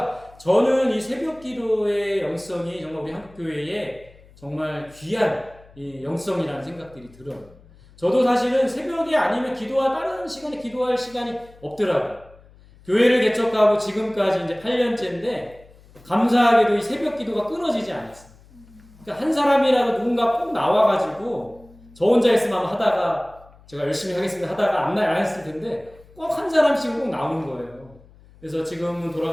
저는 이 새벽 기도의 영성이 정말 우리 한국교회에 정말 귀한 이 영성이라는 생각들이 들어요. 저도 사실은 새벽에 아니면 다른 시간에 기도할 시간이 없더라고요. 교회를 개척하고 지금까지 이제 8년째인데 감사하게도 이 새벽 기도가 끊어지지 않았어요. 그러니까 한 사람이라도 누군가 꼭 나와가지고, 저 혼자 있으면 하다가 제가 열심히 하겠습니다 하다가 안 했을 텐데 꼭 한 사람씩은 꼭 나오는 거예요. 그래서 지금은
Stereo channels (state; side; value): noise; left; hum, 25 dB below the sound